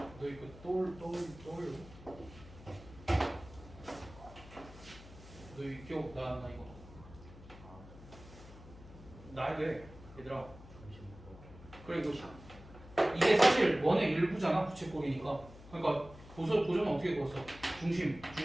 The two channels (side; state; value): left; noise; hum, 18 dB below the sound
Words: 이거 떠올려? 너 이거 기억 나왔나 이거? 나야 돼 얘들아. 그리고 이게 사실 원의 일부잖아 부채꼴이니까. 그러니까 보조는 어떻게 그었어? 중심